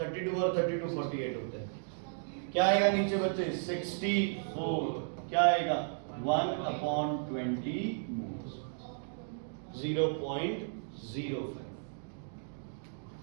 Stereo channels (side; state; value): left; silent; digital silence